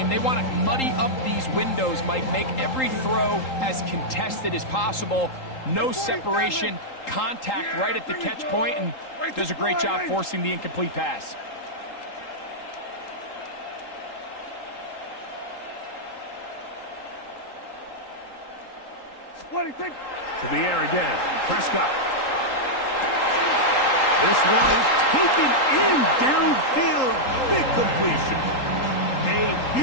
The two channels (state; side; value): late; right; 3.8 ms